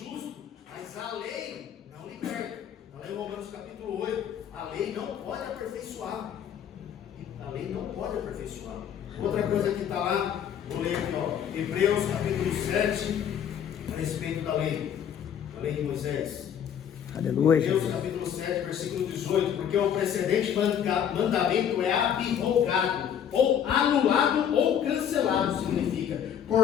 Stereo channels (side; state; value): right; quieter; 8.9 dB